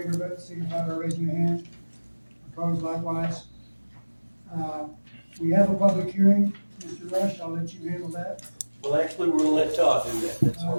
of it, signify by raising your hand. Opposed likewise. We have a public hearing. Mr. Rush, I'll let you handle that. Well, actually, we're gonna let Todd do that, that's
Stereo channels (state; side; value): inverted; both; correlation -1.00